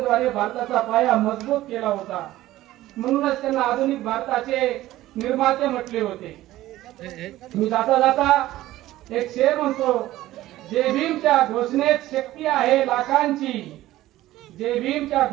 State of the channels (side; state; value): left; quieter; 15.5 dB